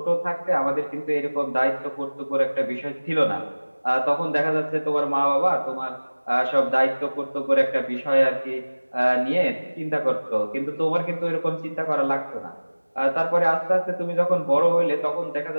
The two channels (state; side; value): inverted; both; correlation -1.00